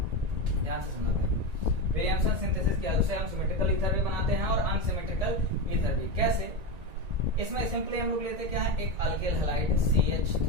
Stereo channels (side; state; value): left; late; 1.9 ms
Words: ध्यान से सुनना भाई। विलियमसन सिंथेसिस की हेल्प से हम सिमेट्रिकल ईथर भी बनाते हैं और अनसिमेट्रिकल ईथर भी। कैसे? इसमें सिंपली हम लोग लेते क्या है, एक अल्किल हैलाइड